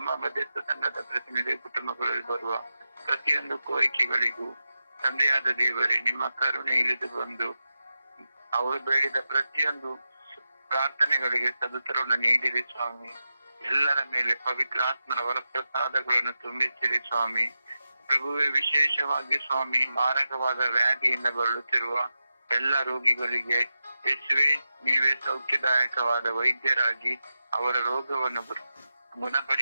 ಮಧ್ಯಸ್ಥ ತಂಡದ ಪ್ರತಿನಿಧಿ ಕುಟುಂಬಗಳಲ್ಲಿ ಬರುವ ಪ್ರತಿಯೊಂದು ಕೋರಿಕೆಗಳಿಗೂ ತಂದೆಯಾದ ದೇವರೇ, ನಿಮ್ಮ ಕರುಣೆ ಇಳಿದು ಬಂದು ಅವರು ಬೇಡಿದ ಪ್ರತಿಯೊಂದು ಪ್ರಾರ್ಥನೆಗಳಿಗೆ ಸದುತ್ತರವನ್ನು ನೀಡಿರಿ ಸ್ವಾಮಿ. ಎಲ್ಲರ ಮೇಲೆ ಪವಿತ್ರಾತ್ಮನ ವರಪ್ರಸಾದಗಳನ್ನು ತುಂಬಿಸಿರಿ ಸ್ವಾಮಿ. ಪ್ರಭುವೆ, ವಿಶೇಷವಾಗಿ ಸ್ವಾಮಿ, ಮಾರಕವಾದ ವ್ಯಾಧಿಯಿಂದ ಬಳಲುತ್ತಿರುವ ಎಲ್ಲ ರೋಗಿಗಳಿಗೆ ಯೇಸುವೆ, ನೀವೇ ಸೌಖ್ಯದಾಯಕವಾದ ವೈದ್ಯರಾಗಿ ಅವರ ರೋಗವನ್ನು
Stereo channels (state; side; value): inverted; both; correlation -0.91